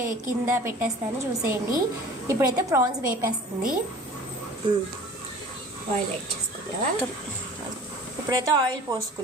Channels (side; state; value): both; normal; correlation 0.43